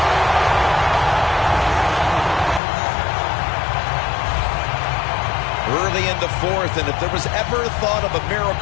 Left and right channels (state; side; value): drops out; right; at 2.6 s